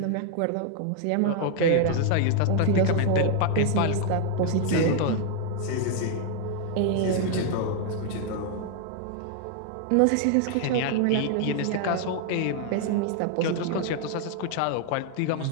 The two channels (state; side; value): different; both; correlation 0.00